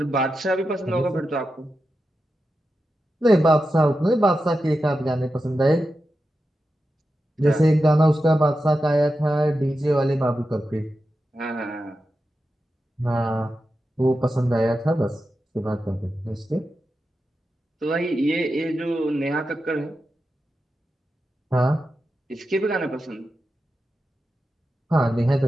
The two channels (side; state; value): both; normal; correlation 0.90